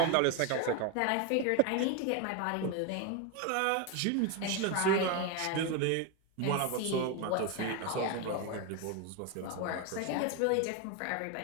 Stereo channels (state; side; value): different; both; correlation 0.02